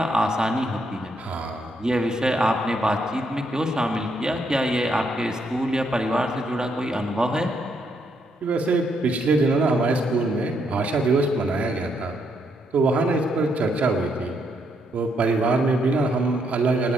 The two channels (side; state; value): both; normal; correlation 0.76